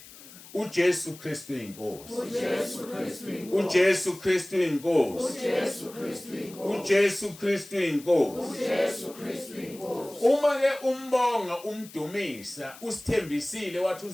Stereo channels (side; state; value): left; noise; hiss, 19 dB below the sound